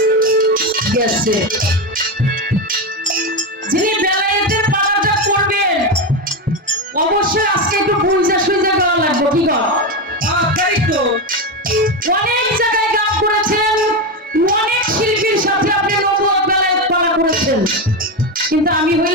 গেছে। যিনি বেলায়েতের পালাটা করবেন অবশ্যই আজকে একটু বুঝা সুঝা গাওয়া লাগবে। কি গাও? তাই তো অনেক জায়গায় গান করেছেন, অনেক শিল্পীর সাথে আপনি নবুয়ত বেলায়েত পালা করেছেন, কিন্তু আমি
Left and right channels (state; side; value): normal; both; correlation 0.13